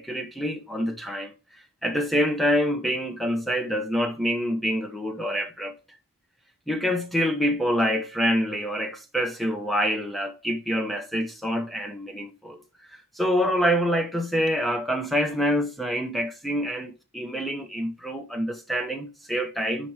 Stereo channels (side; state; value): both; normal; correlation 0.72